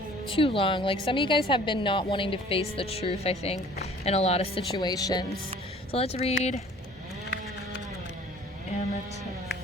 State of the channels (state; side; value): normal; both; correlation 0.51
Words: too long. Like some of you guys have been not wanting to face the truth, I think, in a lot of situations. So let's read Amethyst.